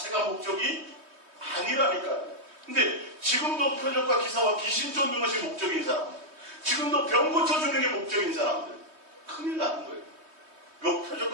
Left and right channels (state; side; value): late; left; 3.2 ms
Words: 목적이 아니라니까요. 근데 지금도 표적과 기사와 귀신 쫓는 것이 목적인 사람들, 지금도 병 고쳐주는 게 목적인 사람들, 큰일 나는 거예요.